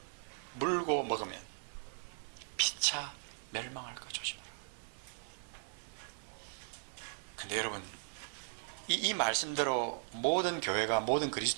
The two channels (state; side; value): silent; left; digital silence